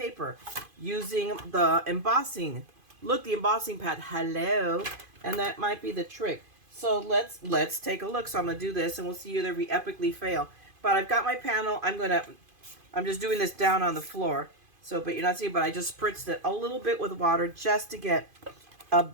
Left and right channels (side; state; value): left; late; 2.5 ms